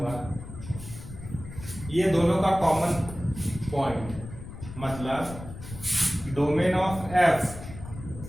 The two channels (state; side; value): noise; left; rumble, 12 dB below the sound